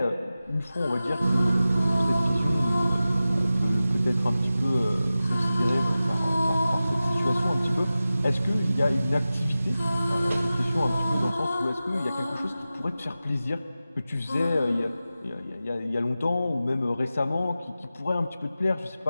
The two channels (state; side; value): inverted; both; correlation -0.94